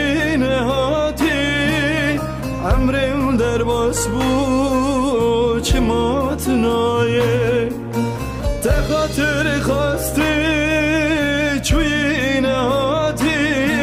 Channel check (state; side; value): identical; both; correlation 1.00